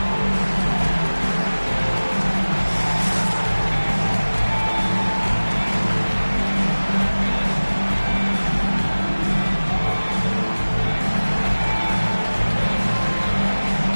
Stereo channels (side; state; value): both; inverted; correlation -1.00